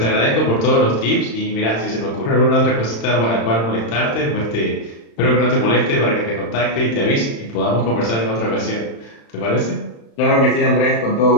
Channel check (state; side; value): late; right; 35 ms